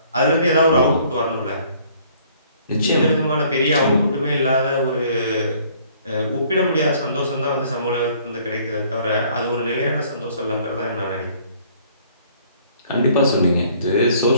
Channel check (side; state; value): both; inverted; correlation -0.59